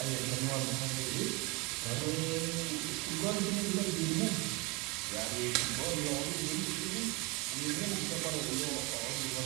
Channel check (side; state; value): left; quieter; 26.9 dB